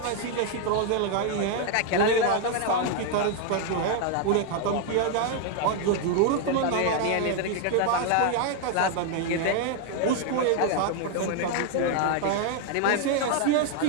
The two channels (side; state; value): both; different; correlation 0.01